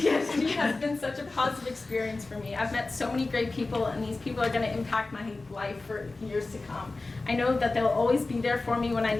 has been such a positive experience for me. I've met so many great people, and these people are going to impact my life for years to come. I know that they'll always be there for me when I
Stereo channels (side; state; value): right; quieter; 3.4 dB